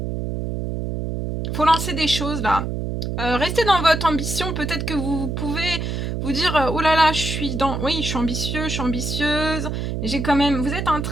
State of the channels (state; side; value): noise; right; hum, 3 dB below the sound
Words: Faut lancer des choses là. Restez dans votre ambition. Peut-être que vous pouvez vous dire oh là là, je suis ambitieux, je suis ambitieuse. J'ai quand même. Vous êtes en